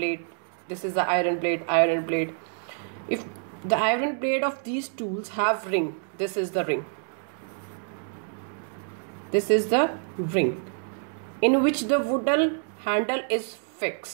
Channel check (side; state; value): left; silent; digital silence